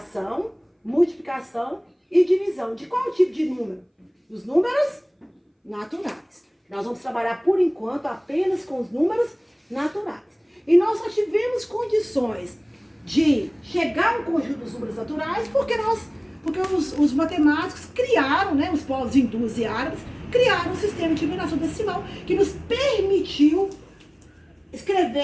multiplicação e divisão. De qual tipo de número? Dos números naturais. Nós vamos trabalhar, por enquanto, apenas com os números naturais. E nós só tivemos condições de chegar ao conjunto dos números naturais porque os matemáticos criaram, né, os povos hindus e árabes, criaram um sistema de numeração decimal que nos permitiu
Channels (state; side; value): identical; both; correlation 1.00